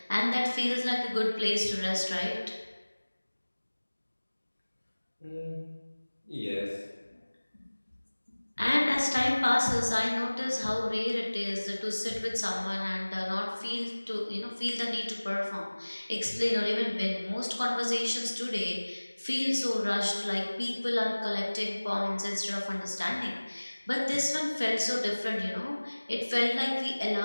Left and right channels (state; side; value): inverted; both; correlation -1.00